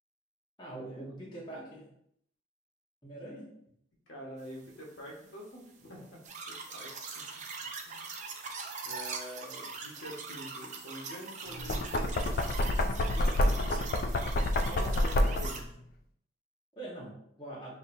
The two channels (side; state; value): both; normal; correlation 0.58